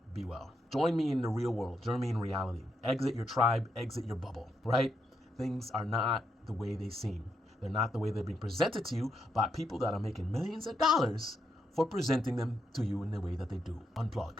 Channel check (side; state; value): both; normal; correlation 0.81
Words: Be well. Join me in the real world. Join me in reality. Exit your tribe, exit your bubble, right? Things are not the way they seem. They're not the way they're being presented to you by people that are making millions of dollars for presenting them to you in the way that they do.